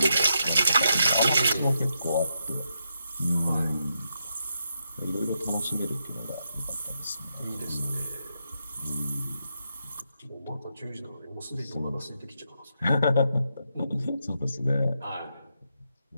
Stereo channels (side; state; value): both; inverted; correlation -0.83